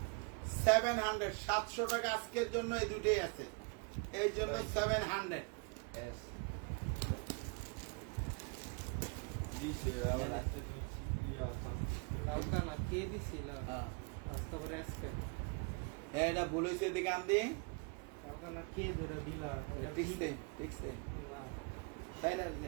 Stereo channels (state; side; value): quieter; left; 33.4 dB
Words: 700 টাকা আজকের জন্য এই 2টাই আছে, এই জন্য 700। কালকা না কে দিছিল আজকে পরে আজকে এটা ভুল হয়েছে, এদিকে আনদি। কালকা না কে ধরে দিলা ঠিকছে, ঠিকছে, তাই না?